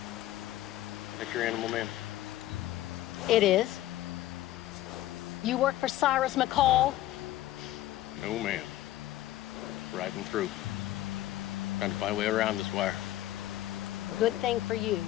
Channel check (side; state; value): right; quieter; 14.7 dB